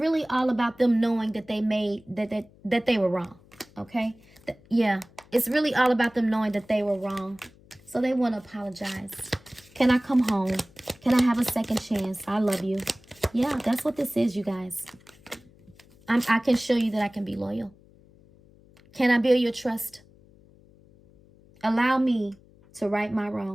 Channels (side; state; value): left; noise; hum, 27 dB below the sound